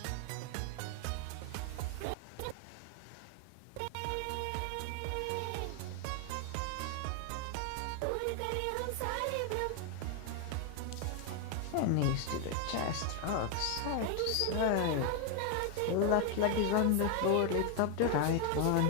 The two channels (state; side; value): different; both; correlation 0.01